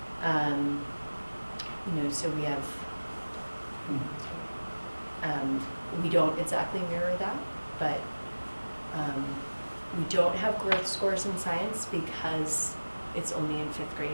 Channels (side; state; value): both; inverted; correlation -1.00